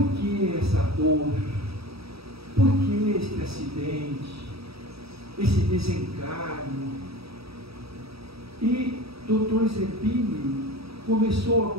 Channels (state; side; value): late; left; 0.77 ms